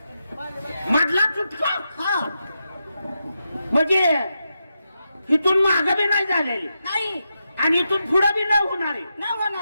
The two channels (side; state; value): both; inverted; correlation -0.87